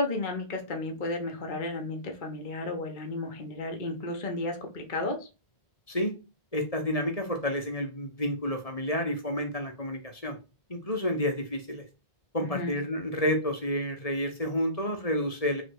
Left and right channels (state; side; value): late; right; 1.7 ms